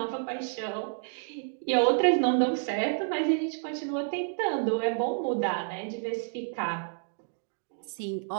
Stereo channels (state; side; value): silent; left; digital silence